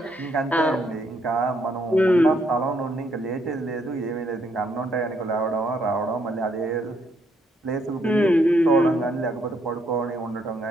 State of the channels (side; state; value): both; normal; correlation 0.73